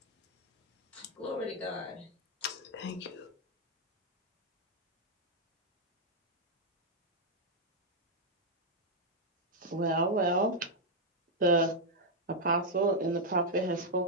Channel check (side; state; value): both; normal; correlation -0.02